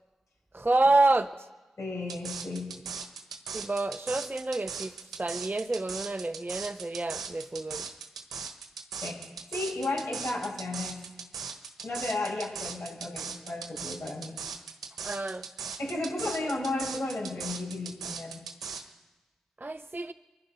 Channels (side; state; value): both; normal; correlation 0.86